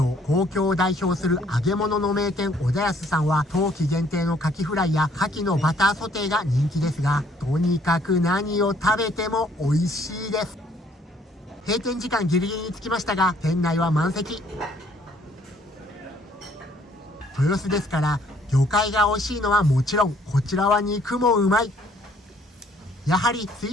東京を代表する揚げ物の名店小田安さんは冬季限定のカキフライやカキのバターソテーが人気ですが、とにかく何を食べても美味しいです。閉店時間ギリギリに着きましたが店内は満席。豊洲ですから魚介が美味しいのはもちろん、こちらは肉もうまい。やはり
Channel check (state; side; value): normal; both; correlation 0.63